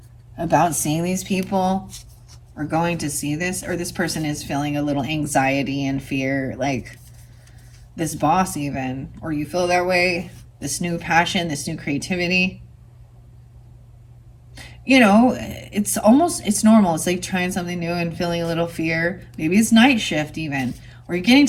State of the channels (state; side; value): identical; both; correlation 1.00